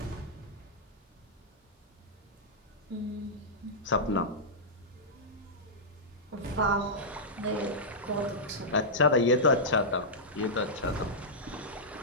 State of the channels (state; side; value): normal; both; correlation -0.11